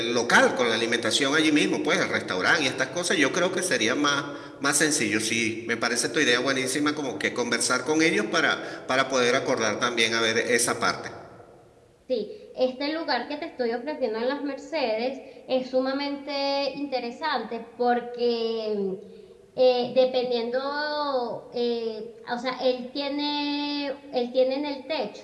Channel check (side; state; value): both; identical; correlation 1.00